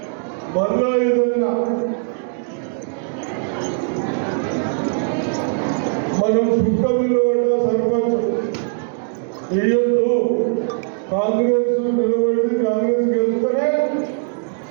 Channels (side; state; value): left; silent; 66 dB below the other